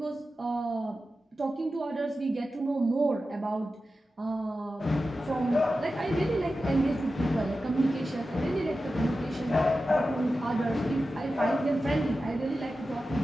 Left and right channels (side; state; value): both; normal; correlation 0.93